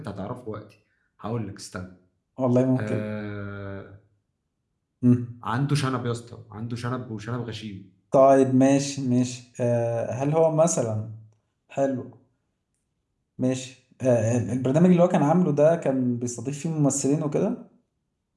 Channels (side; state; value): both; identical; correlation 1.00